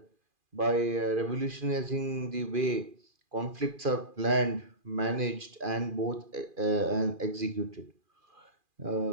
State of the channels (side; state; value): left; late; 2.4 ms